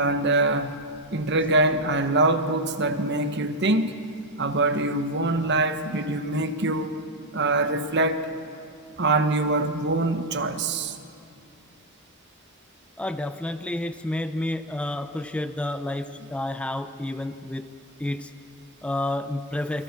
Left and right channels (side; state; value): both; normal; correlation 0.06